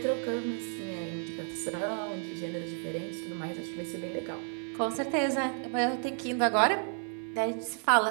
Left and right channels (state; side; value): silent; left; 57 dB below the other